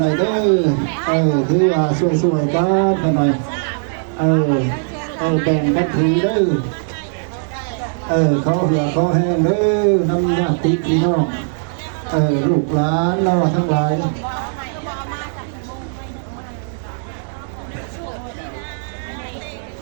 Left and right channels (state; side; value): silent; left; digital silence